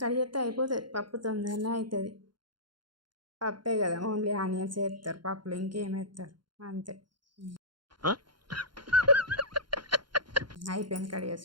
కడిగి చేస్తే అయిపోతుంది, పప్పు తొందరనే అవుతుంది. పప్పే కదా, ఓన్లీ ఆనియన్స్ వేస్తారు పప్పులో, ఇంకేం వేస్తారు అంతే. అయిపోయింది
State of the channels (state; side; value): late; left; 0.71 ms